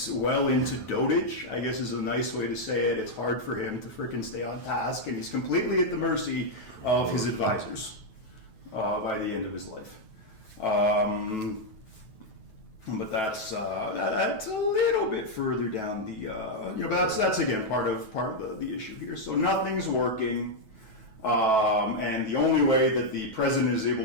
well into dotage, I guess is a nice way to say it. It's hard for him to frickin' stay on task, and he's completely at the mercy of his advisors by the end of his life. But that's a little bit further down the, that's again part of the issue here. So nothing's working. And the only way that the president is able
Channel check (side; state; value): right; late; 9.2 ms